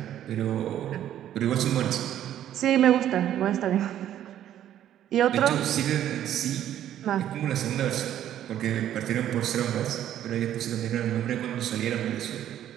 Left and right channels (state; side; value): quieter; left; 11.3 dB